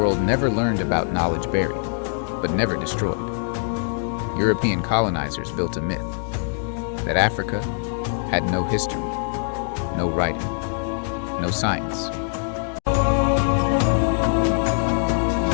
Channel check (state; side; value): silent; right; digital silence